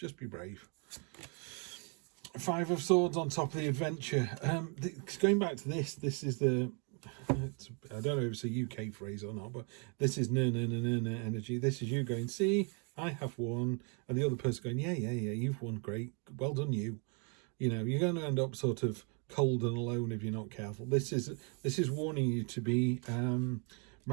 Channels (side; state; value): left; quieter; 37.7 dB